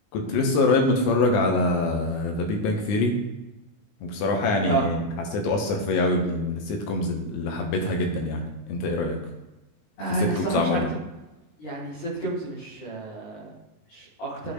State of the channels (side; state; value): right; late; 19 ms